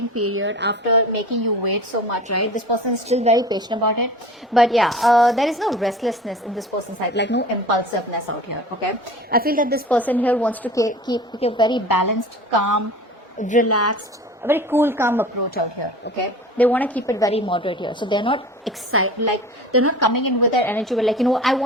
period, after making you wait so much, right, this person is still very patient about it. But yeah, there is no restlessness in this person's side, like no impulsiveness out here. Okay, I feel that this person here wants to keep a very balanced, calm, relaxed, a very cool, calm approach out here. Okay, they want to keep it very moderate here, so they're not excited, like they're not coming in with their energy, like, you know, I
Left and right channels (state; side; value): normal; both; correlation 0.39